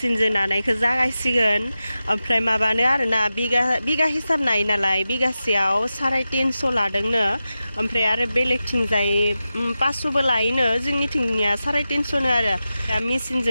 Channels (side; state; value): both; inverted; correlation -0.93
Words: नानायखौ जागायसिगोन ओमफ्राय माबानो आरोना बिगा हिसाब नायो नालाय बिगासेयाव 350 लादोंनो ओमफ्राय आरो बेलेगथिंजाय 500बो लायोनो जोंनिथिंनिया 350नो आरो दा